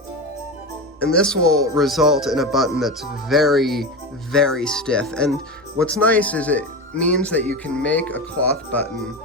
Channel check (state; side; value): normal; both; correlation 0.22